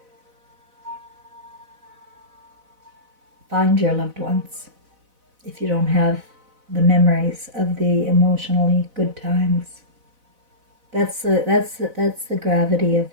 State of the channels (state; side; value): late; left; 4.0 ms